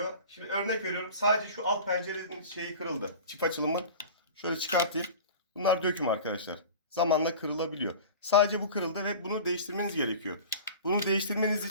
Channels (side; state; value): both; inverted; correlation -0.37